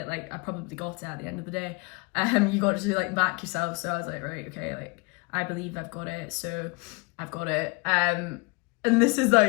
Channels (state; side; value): quieter; right; 28.9 dB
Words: Like I probably got it at the end of the day. You got to like back yourself. So I was like, right, okay, like I believe I've got it. So I've got it. And this is